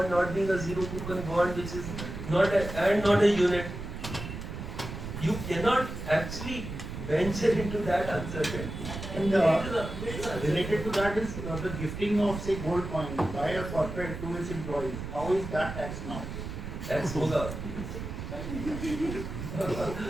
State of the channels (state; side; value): noise; right; rumble, 7 dB below the sound